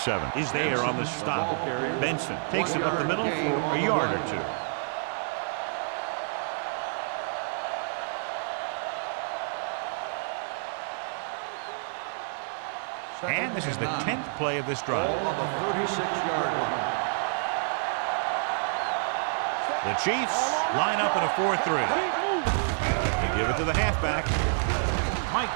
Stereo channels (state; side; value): silent; left; digital silence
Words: is there on the stop. Benson takes it up the middle for a yard or two. And this is the 10th play of this drive. On the 36-yard line. The Chiefs line up in a 4-3. They give it to the halfback.